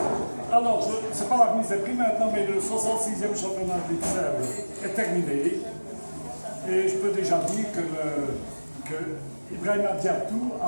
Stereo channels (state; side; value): inverted; both; correlation -1.00